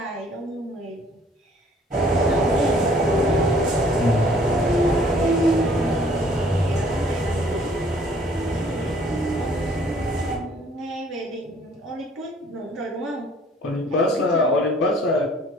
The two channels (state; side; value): normal; both; correlation 0.58